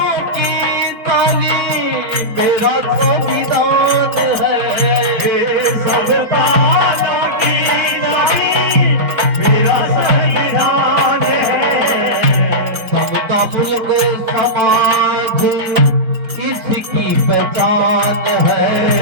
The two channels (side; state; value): left; late; 5.2 ms